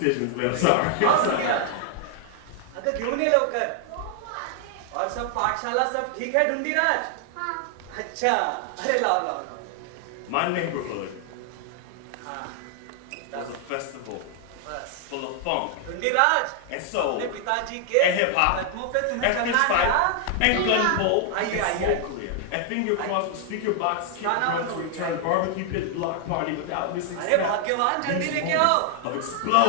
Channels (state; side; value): different; both; correlation 0.00